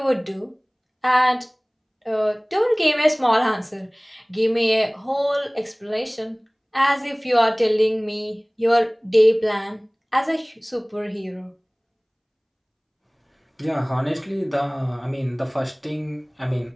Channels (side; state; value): both; identical; correlation 1.00